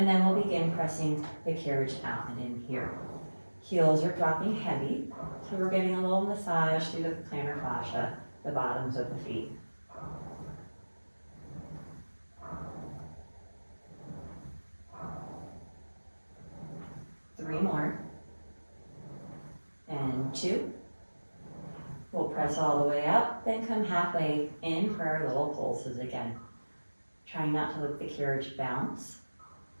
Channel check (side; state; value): both; inverted; correlation -1.00